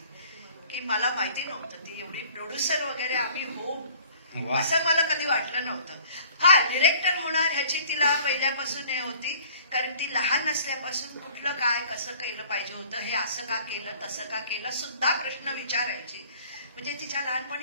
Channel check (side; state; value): both; inverted; correlation -0.52